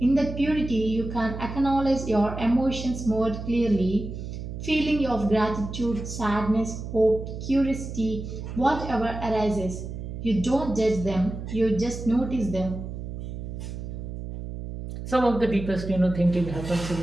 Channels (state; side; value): noise; right; hum, 8 dB below the sound